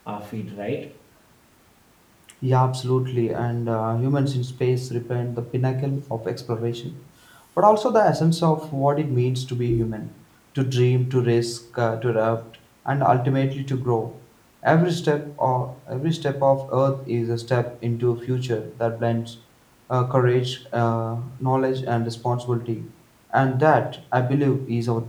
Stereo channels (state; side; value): identical; both; correlation 1.00